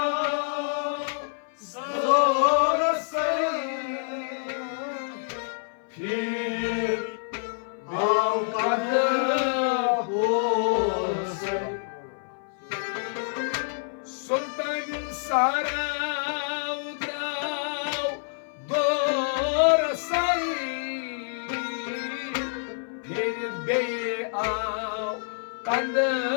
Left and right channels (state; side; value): silent; right; 58 dB below the other